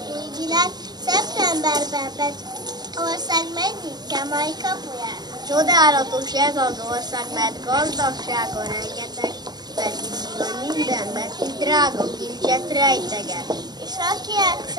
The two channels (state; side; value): late; left; 0.20 ms